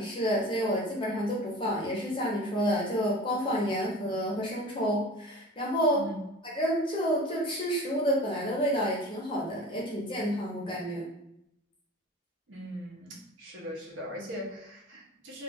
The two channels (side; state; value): both; normal; correlation 0.38